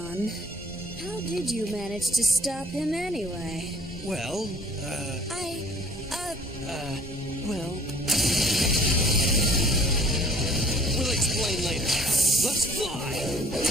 How did you manage to stop him anyway? Well, well... We'll explain later. Let's fly!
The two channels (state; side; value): normal; both; correlation 0.53